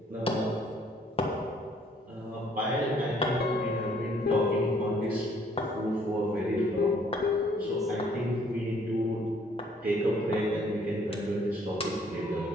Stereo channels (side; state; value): both; normal; correlation 0.62